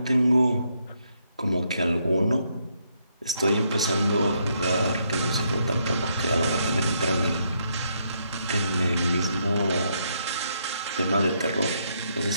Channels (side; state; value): both; inverted; correlation -0.76